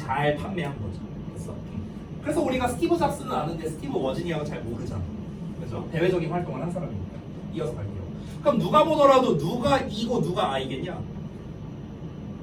판매한 거죠. 그래서 우리가 스티브 잡스는 아는데 스티브 워즈니악은 잘 모르잖아. 그렇죠? 대외적인 활동을 한 사람이니까. 이어서 갈게요. 그럼 누가 보더라도 누가 E고 누가 I겠냐?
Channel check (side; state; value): both; identical; correlation 1.00